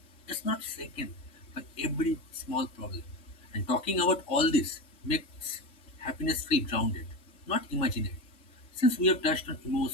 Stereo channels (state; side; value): late; right; 3.0 ms